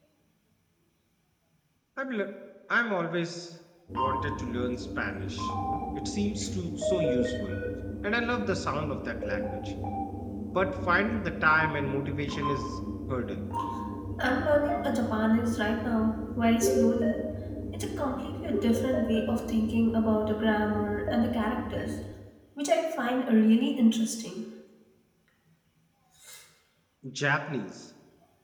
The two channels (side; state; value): both; identical; correlation 1.00